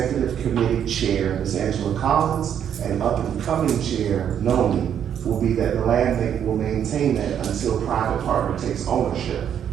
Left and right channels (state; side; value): quieter; left; 9.0 dB